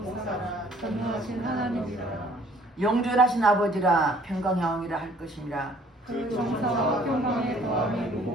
전능하신 하나님이라. 영존하신 아버지라 평강여왕이라 할 것이니라. 그 정사와 평강의 더함이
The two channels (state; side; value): normal; both; correlation 0.57